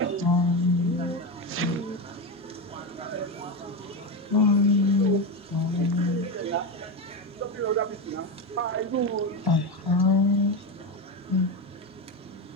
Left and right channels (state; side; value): normal; both; correlation 0.15